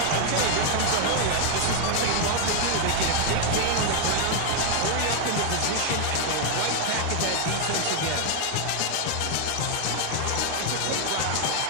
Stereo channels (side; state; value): both; different; correlation 0.00